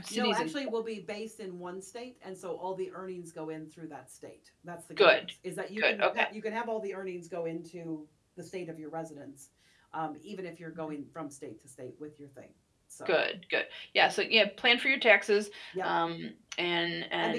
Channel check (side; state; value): both; identical; correlation 1.00